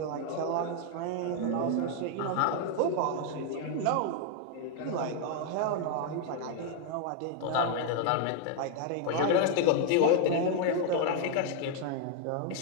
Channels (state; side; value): different; both; correlation 0.00